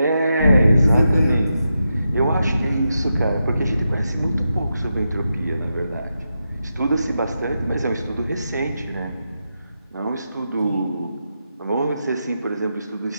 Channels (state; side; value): inverted; both; correlation -0.87